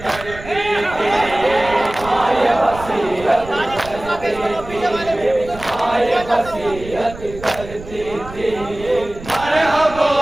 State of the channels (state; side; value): noise; right; rumble, 14 dB below the sound